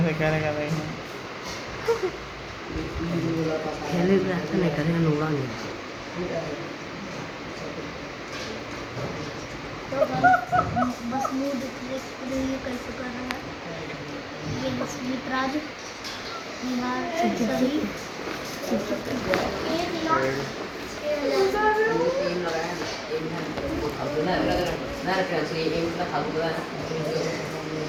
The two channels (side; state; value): both; identical; correlation 1.00